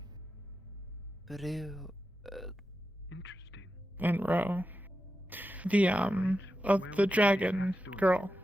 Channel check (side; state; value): both; normal; correlation 0.90